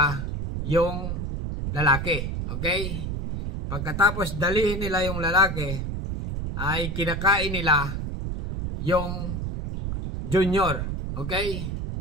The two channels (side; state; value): right; noise; rumble, 4 dB below the sound